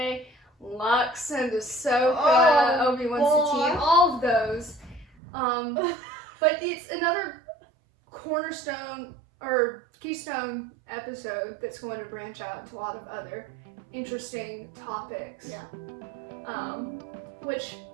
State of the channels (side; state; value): left; drops out; at 5.1 s